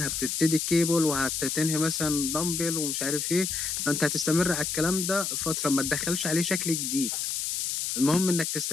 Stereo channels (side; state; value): left; noise; hiss, 1 dB below the sound